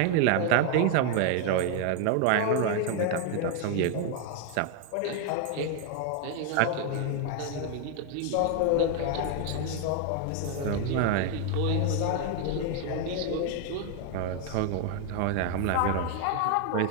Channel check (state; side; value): different; both; correlation 0.00